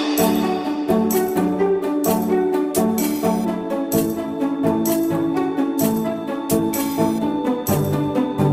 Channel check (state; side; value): identical; both; correlation 1.00